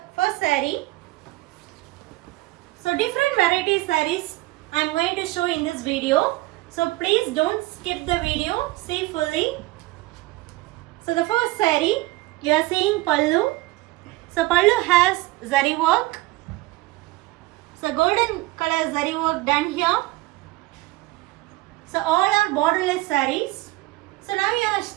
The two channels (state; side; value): quieter; left; 19.8 dB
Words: first saree. So different variety sarees I am going to show in this video. So please don't skip the video, see fully. So the first saree, we are seeing pallu. So pallu has zari work. So golden color zari work done here. So all are borderless sarees. So now you are